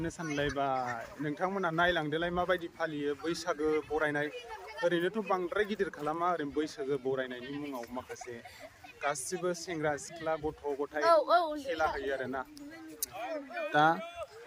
सानलायबाय नोंथांमोना नायलांदोलाय माबायदि फालियो बैसागो बरायनाय ओरैनोथ' बांद्राय गिदिर खालामा ओरैनो बैसागो बरायनायनि मुङाव माखासे गासिबो सेंग्रा सिख्ला गथ' गथाय खेला होयो आरोना दा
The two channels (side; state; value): both; identical; correlation 1.00